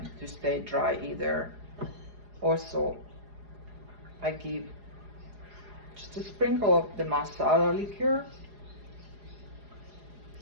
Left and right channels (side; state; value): left; late; 4.8 ms